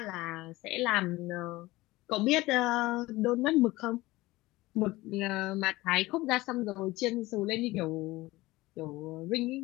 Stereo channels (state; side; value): quieter; right; 19.3 dB